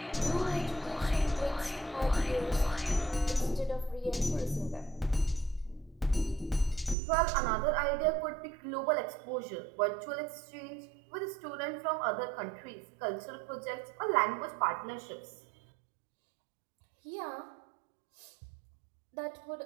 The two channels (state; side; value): drops out; left; at 7.0 s